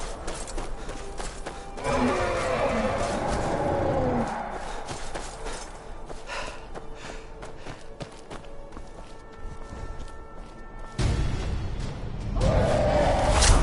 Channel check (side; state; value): both; identical; correlation 1.00